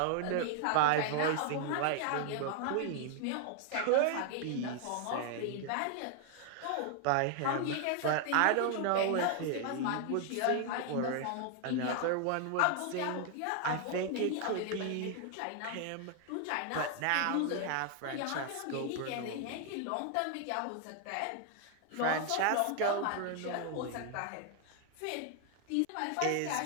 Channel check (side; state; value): both; different; correlation 0.00